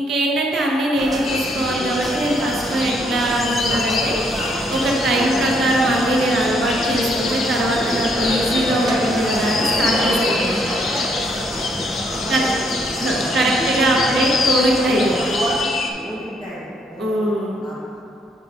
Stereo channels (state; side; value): normal; both; correlation 0.70